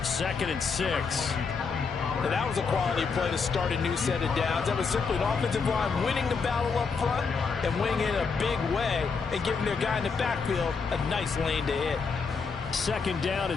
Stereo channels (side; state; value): right; quieter; 5.1 dB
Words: and 6. And that was a quality play to start a new set of downs. That was simply an offensive line winning the battle up front and winning in a big way and giving their guy in the backfield a nice lane to hit. 2nd down